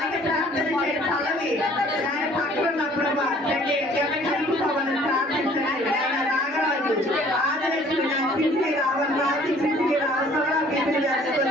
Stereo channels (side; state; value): both; normal; correlation 0.55